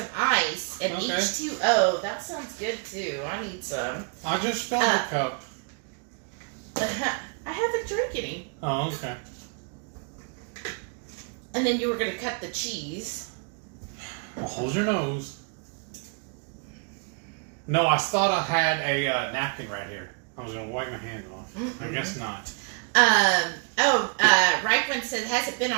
ice and H2O. That sounds good, too. I need some. I just filled the cup. I haven't drank any. Oh, okay. And then you were going to cut the cheese. Well, hold your nose. No, I thought I had a napkin right here. I was going to wipe my hands off. I guess not. Reichman says, hasn't been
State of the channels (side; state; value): left; quieter; 39.6 dB